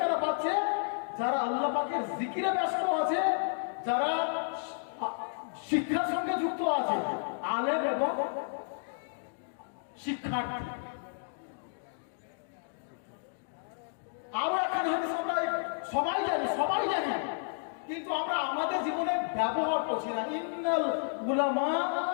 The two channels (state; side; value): silent; right; digital silence